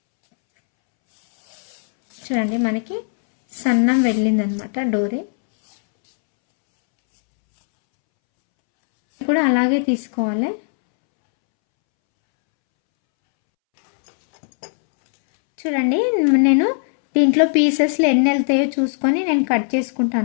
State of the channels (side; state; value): right; silent; 67 dB below the other